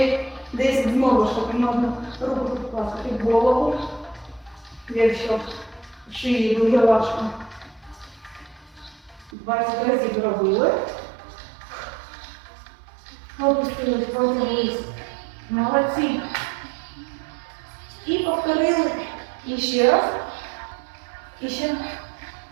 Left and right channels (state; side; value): drops out; left; at 9.3 s